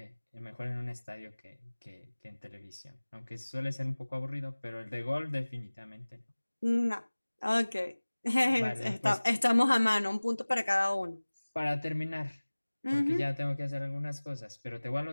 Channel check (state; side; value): inverted; both; correlation -1.00